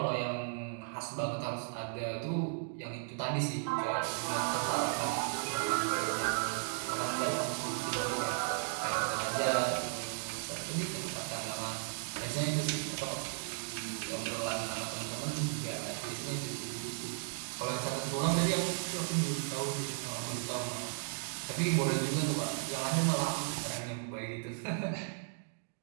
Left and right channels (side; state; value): left; silent; digital silence